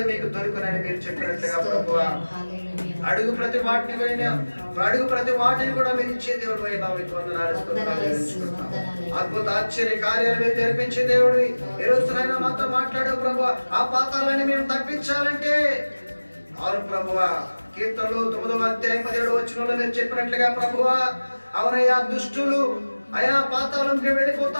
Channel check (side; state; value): both; inverted; correlation -1.00